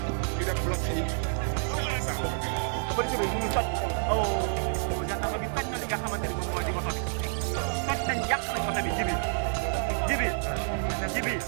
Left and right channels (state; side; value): silent; left; digital silence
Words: ñu def bloc fii waaw. police bi ñu ngi toj gendarme bi toj na li nga xamante ni moom moo di oto bi toj nañ yàq nañ oto bi